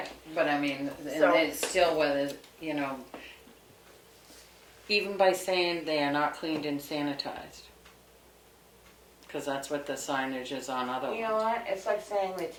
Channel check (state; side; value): identical; both; correlation 1.00